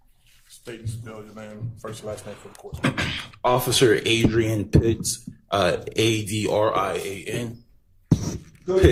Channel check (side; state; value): both; identical; correlation 1.00